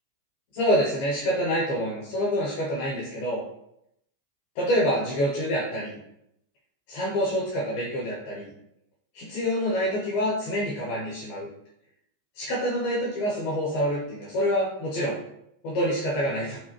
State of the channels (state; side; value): late; right; 15 ms